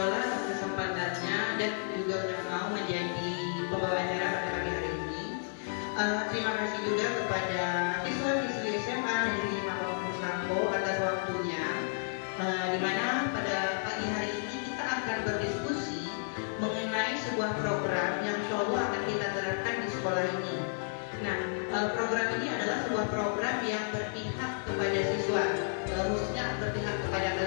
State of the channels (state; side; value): silent; right; digital silence